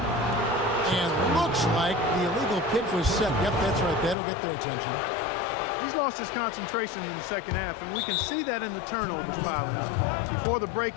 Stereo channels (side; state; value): right; drops out; at 4.2 s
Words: And looks like the illegal kick was set. Yep, that's right. That'll get their attention. He's lost his concentration in the second half, and we can see that in the turnovers piling up. Before the break,